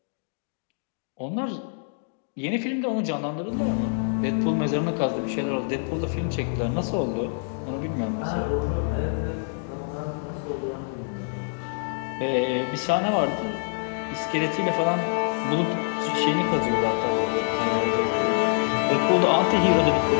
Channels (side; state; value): right; silent; digital silence